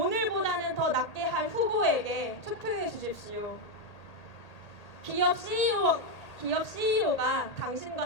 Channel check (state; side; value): late; right; 1.8 ms